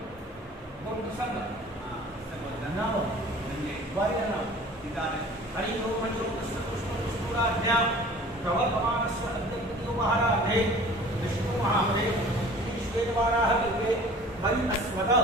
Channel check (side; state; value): both; normal; correlation 0.46